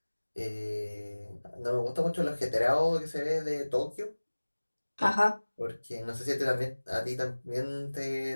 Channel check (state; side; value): inverted; both; correlation -1.00